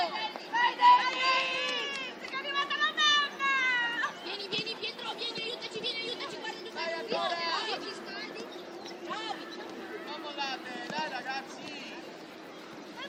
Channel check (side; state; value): both; identical; correlation 1.00